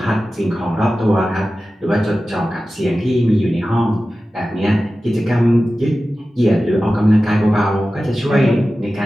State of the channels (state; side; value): normal; both; correlation 0.95